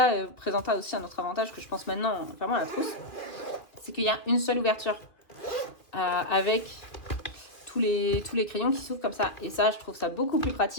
présenta aussi un autre avantage que je pense maintenant, vraiment à la trousse. C'est qu'il y a une seule ouverture avec tous les crayons qui s'ouvrent comme ça. Et ça, je trouve ça beaucoup plus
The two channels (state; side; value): late; right; 2.6 ms